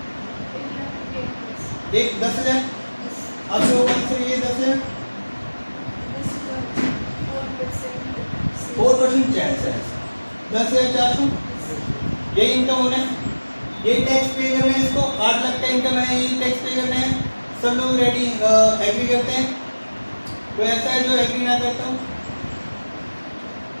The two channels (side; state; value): both; inverted; correlation -1.00